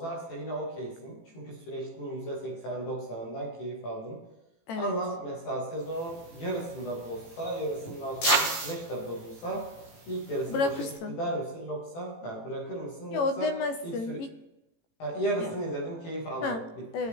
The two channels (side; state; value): right; late; 18 ms